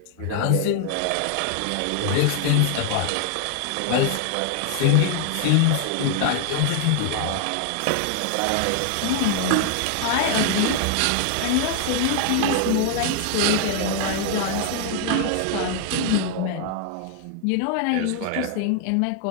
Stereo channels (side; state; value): both; different; correlation 0.00